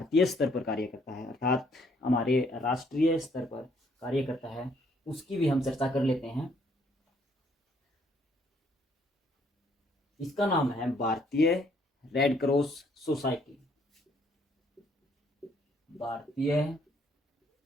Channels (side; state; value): both; normal; correlation 0.67